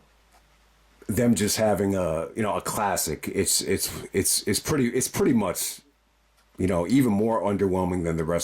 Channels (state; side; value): identical; both; correlation 1.00